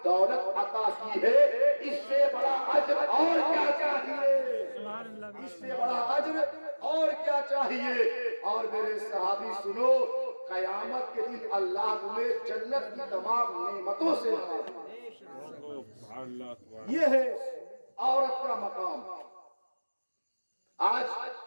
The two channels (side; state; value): both; inverted; correlation -1.00